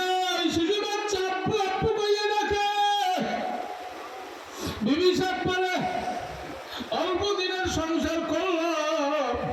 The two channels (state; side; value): identical; both; correlation 1.00